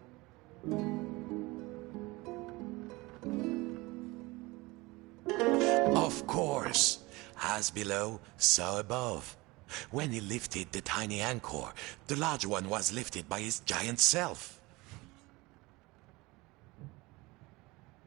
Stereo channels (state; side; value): quieter; left; 22.6 dB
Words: Of course, as below, so above. When he lifted the tiny anchor, the large one was lifted by his giant self.